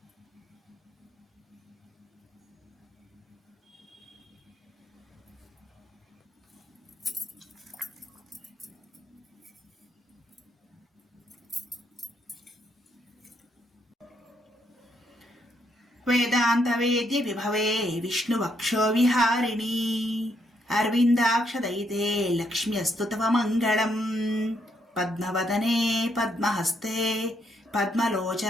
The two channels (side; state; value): both; normal; correlation 0.75